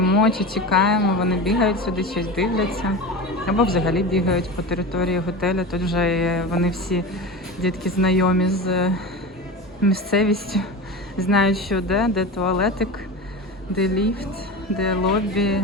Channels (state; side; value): normal; both; correlation 0.27